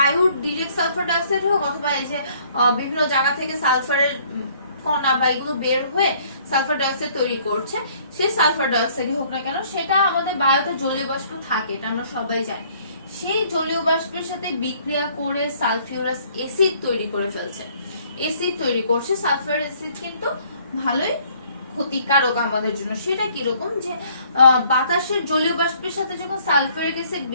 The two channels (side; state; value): both; inverted; correlation -0.61